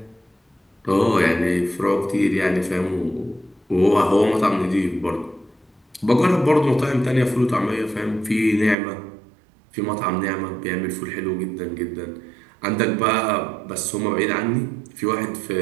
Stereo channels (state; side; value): drops out; left; at 8.8 s